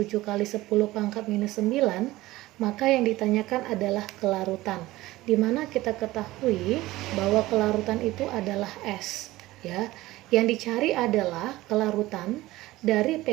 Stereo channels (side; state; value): left; quieter; 17.8 dB